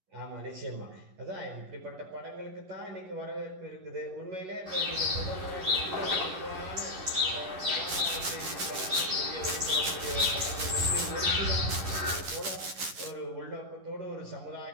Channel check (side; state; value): left; late; 11 ms